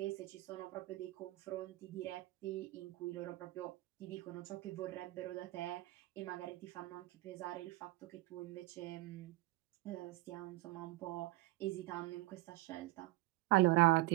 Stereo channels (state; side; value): quieter; left; 19.6 dB